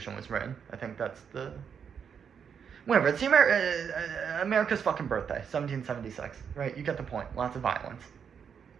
was written. I think that's the... Whatever, it's America's fucking birthday, 1776, right? You get the point. Lots of violence.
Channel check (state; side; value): quieter; left; 7.2 dB